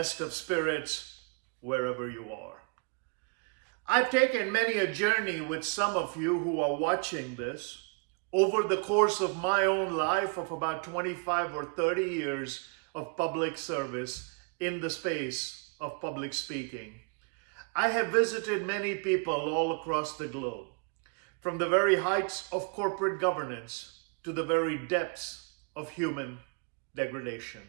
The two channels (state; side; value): quieter; left; 37.1 dB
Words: of spirits wherever you are. I've taken many a journey with some of you who are watching this over the course of my own life of about 25 or 30 years of public service in the space of public speaking. I have visited many people all across the globe, from the very heights of corporate governance to the very depths of human degradation.